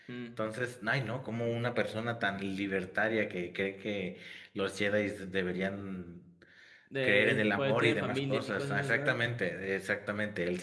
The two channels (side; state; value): both; identical; correlation 1.00